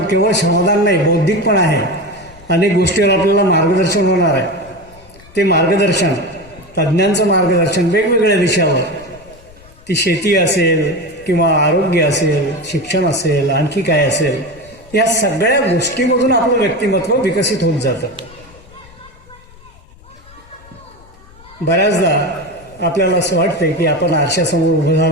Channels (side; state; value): left; noise; rumble, 24 dB below the sound